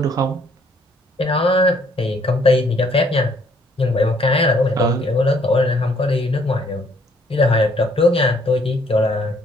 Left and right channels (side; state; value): both; normal; correlation 0.65